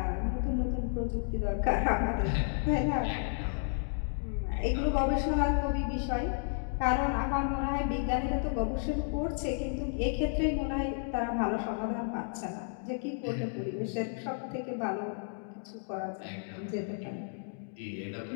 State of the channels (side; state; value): right; silent; digital silence